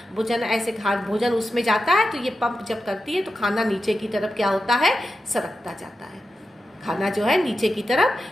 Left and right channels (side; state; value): both; normal; correlation 0.91